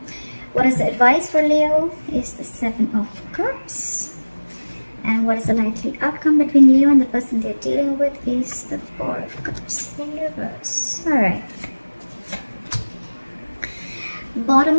What is the advice for Leo? Is the Seven of Cups. And what is the likely outcome between Leo and the person they're dealing with? Is the Four of Cups in reverse. Alright. Bottom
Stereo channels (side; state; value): both; inverted; correlation -1.00